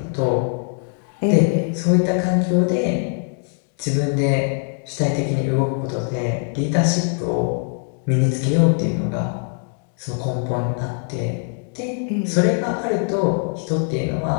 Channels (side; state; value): right; silent; 56 dB below the other